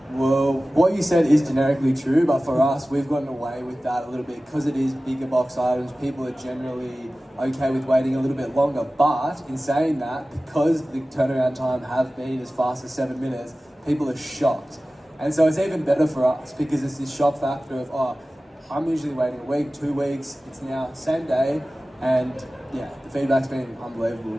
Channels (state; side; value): normal; both; correlation 0.96